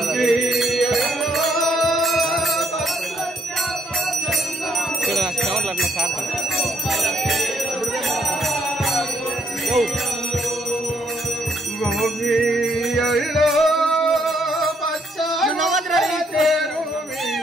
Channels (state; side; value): normal; both; correlation 0.70